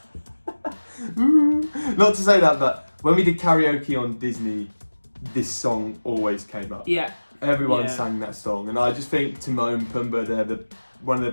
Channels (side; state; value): both; inverted; correlation -1.00